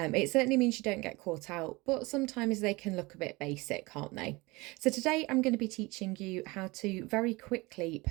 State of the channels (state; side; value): quieter; left; 23.6 dB